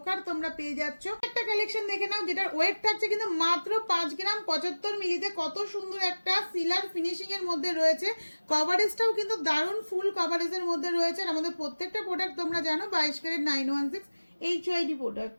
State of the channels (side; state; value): both; inverted; correlation -1.00